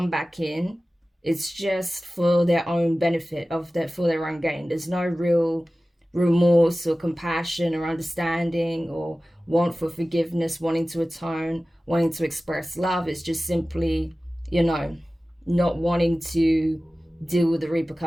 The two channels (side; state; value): both; normal; correlation 0.96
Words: back in, it's just for their own benefit, for their own gain. There's no real remorse or compassion or understanding or want for forgiveness, wanting to atone, wanting to express love. It's just simply, you know, not wanting to deal with the